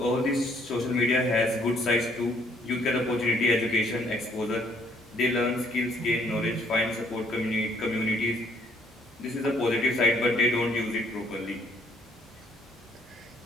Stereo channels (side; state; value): both; normal; correlation 0.65